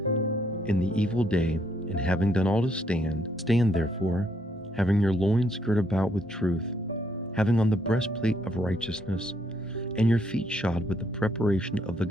in the evil day, and having done all to stand, stand therefore, having your loins girt about with truth, having on the breastplate of righteousness, and your feet shod with the preparation of the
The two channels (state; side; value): normal; both; correlation 0.72